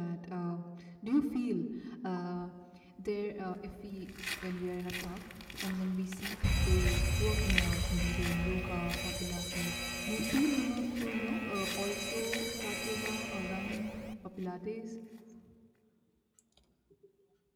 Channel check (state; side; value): identical; both; correlation 1.00